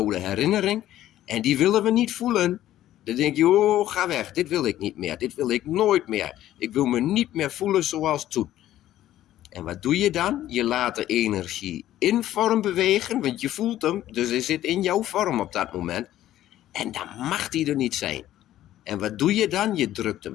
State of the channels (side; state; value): right; quieter; 13.2 dB